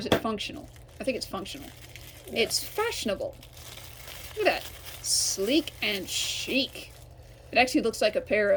it functional? I think it's functional. Yeah. It's fashionable. Look at that. Sleek and chic. It actually looks like a pair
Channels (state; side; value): identical; both; correlation 1.00